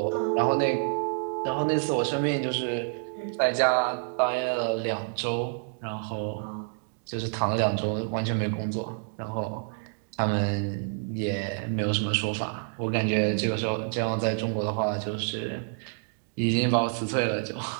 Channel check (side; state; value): left; silent; digital silence